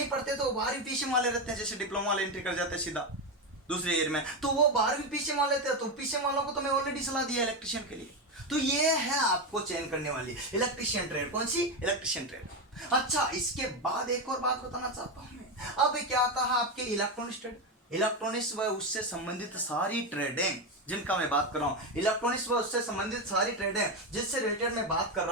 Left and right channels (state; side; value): normal; both; correlation 0.12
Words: पढ़ते तो 12वीं पीसीएम वाले रहते हैं। जैसे डिप्लोमा वाले एंट्री कर जाते हैं सीधा दूसरे ईयर में, तो वो 12वीं पीसीएम वाले थे। तो पीसीएम वालों को तो मैं ऑलरेडी सलाह दिया इलेक्ट्रिशियन के लिए। तो ये है आपको चयन करने वाली इलेक्ट्रिशियन ट्रेड, कौन सी, इलेक्ट्रिशियन ट्रेड। अच्छा, इसके बाद एक और बात बताना चाहता हूं मैं। अब क्या आता है आपके इलेक्ट्रॉनिक्स ट्रेड, इलेक्ट्रॉनिक्स व उससे संबंधित सारी ट्रेडें जिनका मैं बात कर रहा हूं, इलेक्ट्रॉनिक्स व उससे संबंधित सारी ट्रेडें जिससे रिलेटेड मैं बात कर